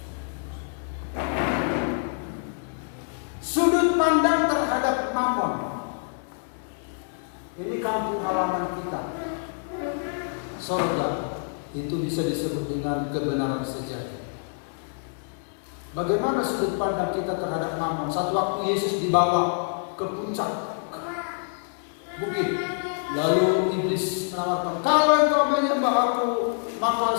sudut pandang terhadap mammon. Ini kampung halaman kita. Surga itu bisa disebut dengan kebenaran sejati. Bagaimana sudut pandang kita terhadap mammon? Satu waktu Yesus dibawa ke puncak bukit, lalu iblis mengatakan, kalau engkau menyembah aku, maka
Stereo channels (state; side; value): silent; right; 61 dB below the other